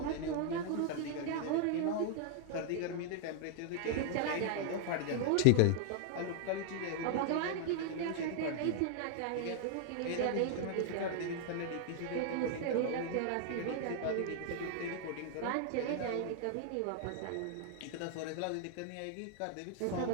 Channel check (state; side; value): different; both; correlation -0.01